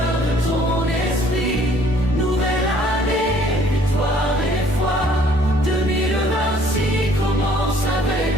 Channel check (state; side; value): normal; both; correlation 0.59